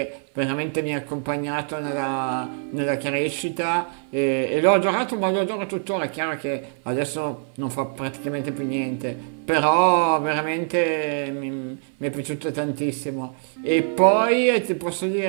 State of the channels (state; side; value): silent; left; 59 dB below the other